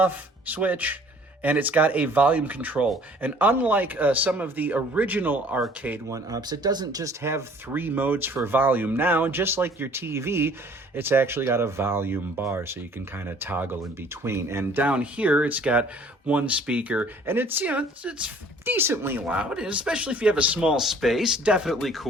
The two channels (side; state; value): both; normal; correlation 0.54